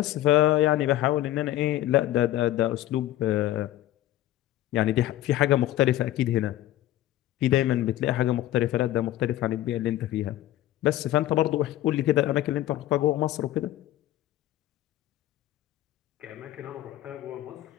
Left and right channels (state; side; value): quieter; right; 14.2 dB